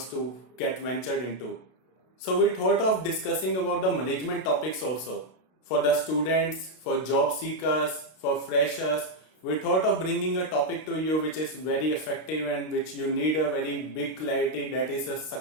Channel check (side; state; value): right; late; 32 ms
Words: to get ventured into. So we thought of discussing about the management topics also. For the students, for job seekers, for freshers, we thought of bringing a topic to you which is very effective and which you need a very big clarity, that is a